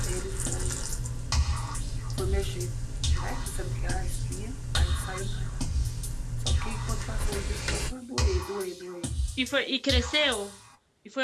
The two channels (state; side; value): identical; both; correlation 1.00